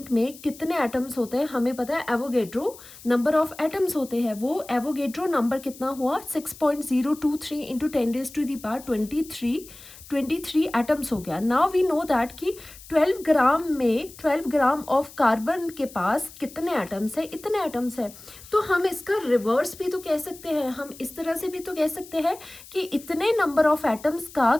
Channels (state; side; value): noise; left; hiss, 19 dB below the sound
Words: में कितने एटम्स होते हैं हमें पता है, एवोगेड्रो नंबर ऑफ एटम्स होते हैं। वो एवोगेड्रो नंबर कितना हुआ 6.023 इंटू 10⁻23 एटम्स हो गया। नाउ वी नो दैट कि 12 ग्राम ऑफ कार्बन के पास कितने एटम्स है, इतने एटम्स है। तो हम इसका रिवर्स भी तो कह सकते हैं, हम इस तरह से भी तो कह सकते हैं कि इतने नंबर ऑफ एटम्स का